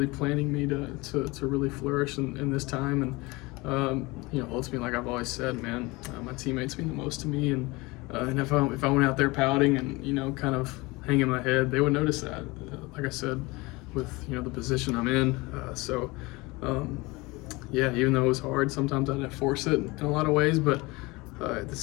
planning me to really flourish in this time. And, you know, ultimately, like I've always said, man, my teammates mean the most to me. And if I went out there pouting and, you know, kind of hanging my head, they would notice that, like I said, with, you know, the position I'm in. Yeah, even though it was hard, sometimes I had to force it in a lot of ways, but at the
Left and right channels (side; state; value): right; quieter; 23.6 dB